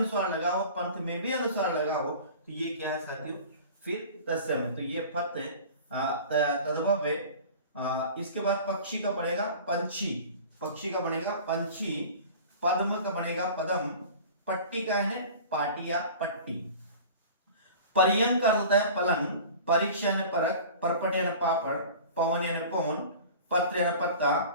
लगा हो, पंथ में भी अनुस्वार लगा हो, तो ये क्या है साथियों, फिर तत्सम है। तो ये फत तद्भव है। इसके बाद पक्षी का बनेगा पंछी, पक्षी का बनेगा पंछी, पद्म का बनेगा पदम, पट्टी का है पाटी या पट्टी, पर्यंक का होता है पलंग, परीक्षा यानी परख, परपट यानी पापड़, पवन यानी पवन, पत्र यानी पत्ता,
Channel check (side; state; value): both; inverted; correlation -0.40